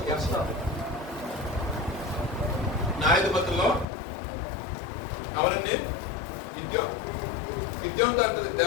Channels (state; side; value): drops out; right; at 3.9 s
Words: యెహోవా. న్యాయాధిపతుల్లో ఎవరండి? గిద్యోనుతో అంటది